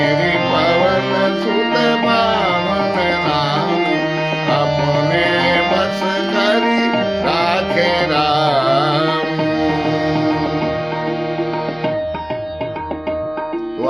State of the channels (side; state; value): left; noise; hum, 30 dB below the sound